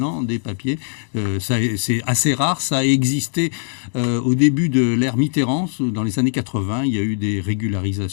des papiers. C'est assez rare, ça a existé au début de l'ère Mitterrand, dans les années 80, il y a eu des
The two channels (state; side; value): silent; right; digital silence